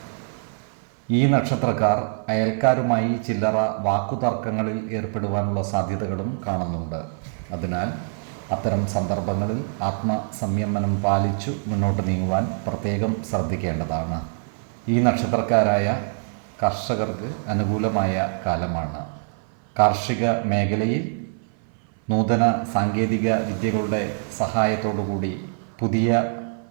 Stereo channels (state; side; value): silent; left; 57 dB below the other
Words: ഈ നക്ഷത്രക്കാർ അയൽക്കാരുമായി ചില്ലറ വാക്കുതർക്കങ്ങളിൽ ഏർപ്പെടുവാനുള്ള സാധ്യതകളും കാണുന്നുണ്ട്. അതിനാൽ അത്തരം സന്ദർഭങ്ങളിൽ ആത്മസംയമനം പാലിച്ചു മുന്നോട്ട് നീങ്ങുവാൻ പ്രത്യേകം ശ്രദ്ധിക്കേണ്ടതാണ്. ഈ നക്ഷത്രക്കാരായ കർഷകർക്ക് അനുകൂലമായ കാലമാണ്. കാർഷിക മേഖലയിൽ നൂതന സാങ്കേതിക വിദ്യകളുടെ സഹായത്തോടുകൂടി പുതിയ